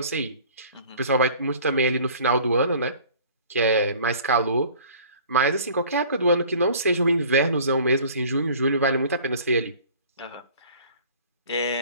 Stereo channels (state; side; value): inverted; both; correlation -0.48